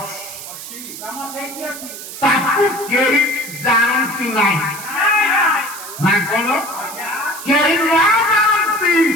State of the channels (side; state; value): right; noise; hiss, 11 dB below the sound